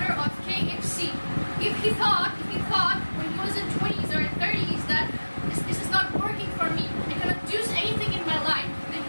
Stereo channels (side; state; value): both; inverted; correlation -1.00